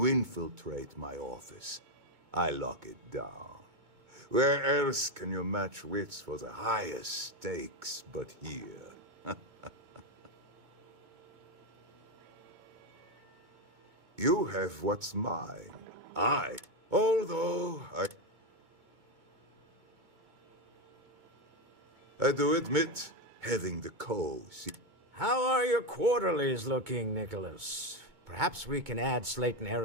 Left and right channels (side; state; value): left; late; 2.2 ms